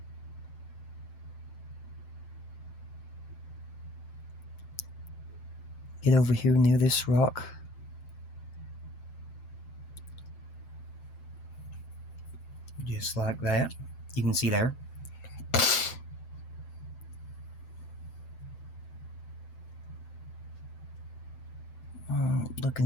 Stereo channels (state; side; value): late; right; 7.8 ms